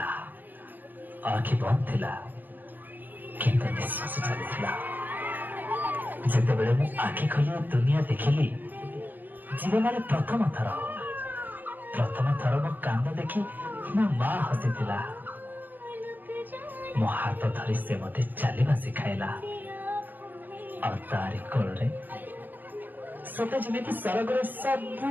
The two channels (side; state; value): left; late; 0.087 ms